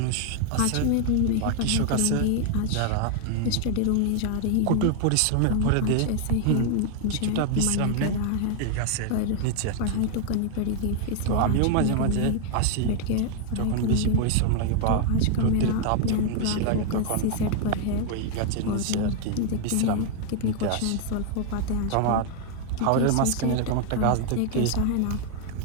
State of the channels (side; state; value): both; different; correlation 0.00